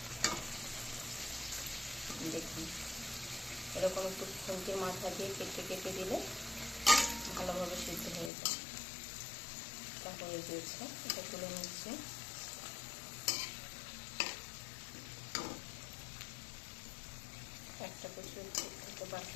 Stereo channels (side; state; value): right; drops out; at 8.3 s